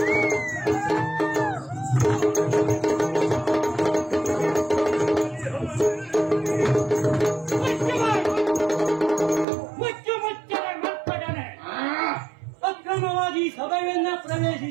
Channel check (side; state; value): left; drops out; at 9.5 s